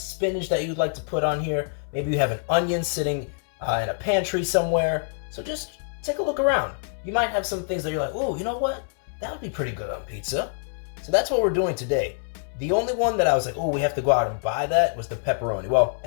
that you'd like to put on here. Maybe you have an onion sitting in a pantry somewhere. So just take a look around. You might have some things that you're like, oh, you know what? That would be pretty good on pizza. So that's what we're doing today. The only one that I was like, oh, we have to go out and buy that was the pepperoni. Well,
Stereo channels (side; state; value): right; silent; 62 dB below the other